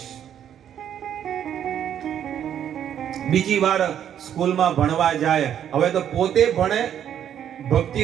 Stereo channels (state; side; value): quieter; left; 9.7 dB